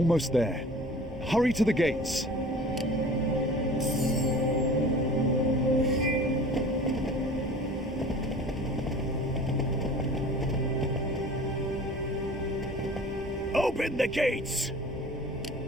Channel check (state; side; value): normal; both; correlation 0.43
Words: there. Hurry to the gates. Open the gates!